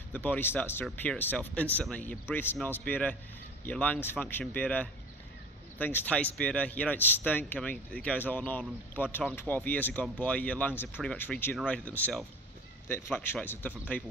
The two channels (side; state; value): both; normal; correlation 0.40